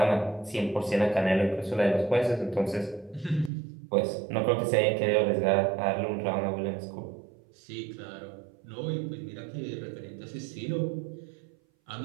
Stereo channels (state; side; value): drops out; left; at 3.5 s